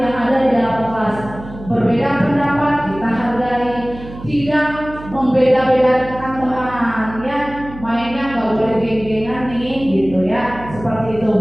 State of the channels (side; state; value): right; noise; hum, 15 dB below the sound